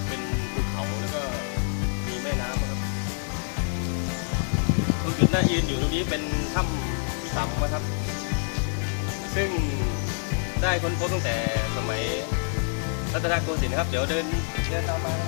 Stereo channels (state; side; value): silent; right; 60 dB below the other